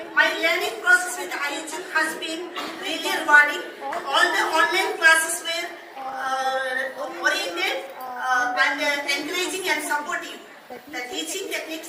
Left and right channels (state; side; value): identical; both; correlation 1.00